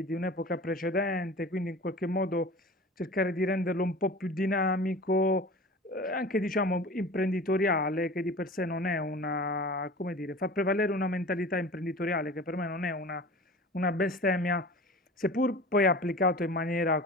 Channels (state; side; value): normal; both; correlation 0.38